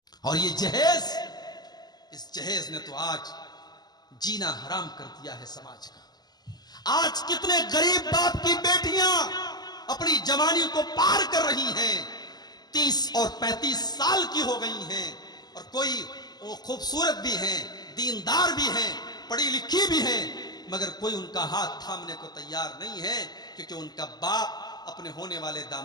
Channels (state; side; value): late; right; 0.20 ms